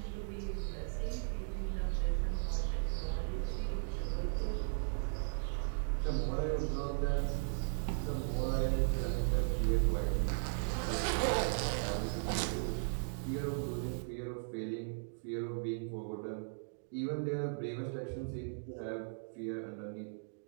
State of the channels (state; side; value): silent; left; digital silence